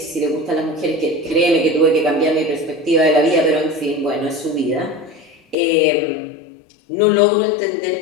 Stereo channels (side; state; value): right; drops out; at 5.6 s